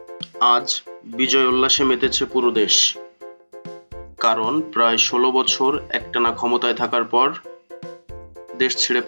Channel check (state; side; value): inverted; both; correlation -1.00